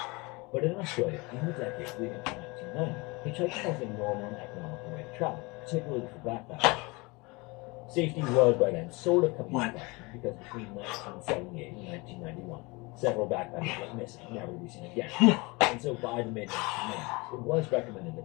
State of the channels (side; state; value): right; quieter; 25.8 dB